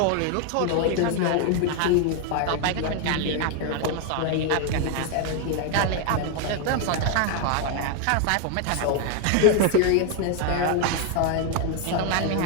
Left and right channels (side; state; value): both; different; correlation 0.00